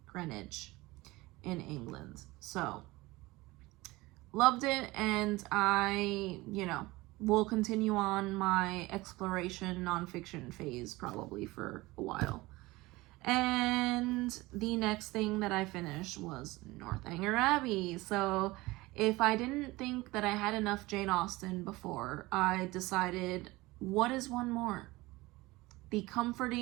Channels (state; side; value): quieter; left; 20.7 dB